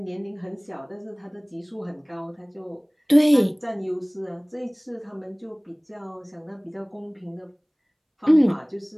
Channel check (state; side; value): identical; both; correlation 1.00